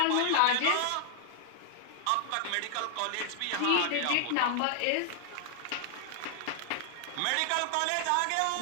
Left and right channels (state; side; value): different; both; correlation 0.00